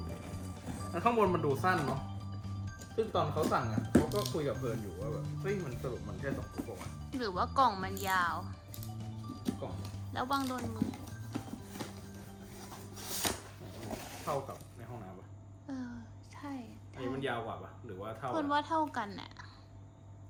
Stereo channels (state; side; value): identical; both; correlation 1.00